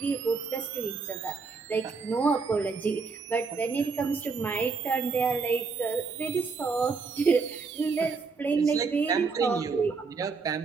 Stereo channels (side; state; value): left; quieter; 4.7 dB